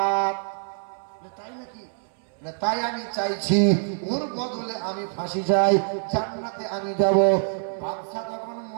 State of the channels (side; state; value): left; silent; 58 dB below the other